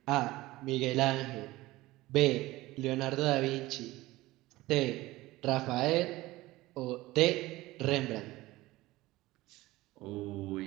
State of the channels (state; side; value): quieter; left; 18.6 dB